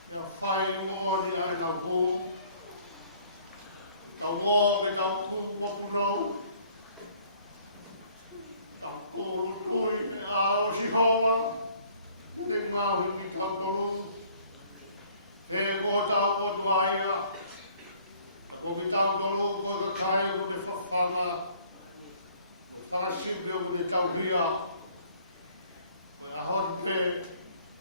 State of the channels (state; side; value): inverted; both; correlation -0.58